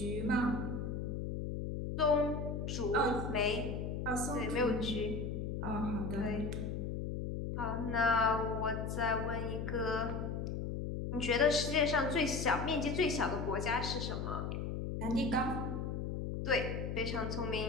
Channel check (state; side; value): noise; left; hum, 3 dB below the sound